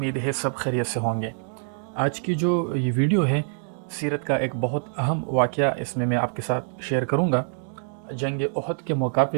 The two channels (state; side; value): silent; left; 62 dB below the other